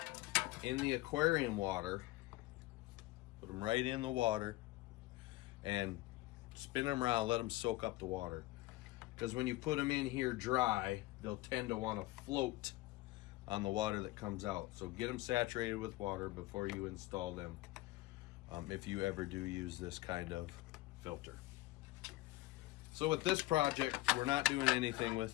in the aquarium water, put them right in the water, and spin them around, let them soak up the water. Because when you put them in here dry, they'll tend to want to float on the water that comes out. So get them saturated with water before you install them, if you ever do use this kind of filter. So with this project, we're not doing anything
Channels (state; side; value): quieter; right; 19.1 dB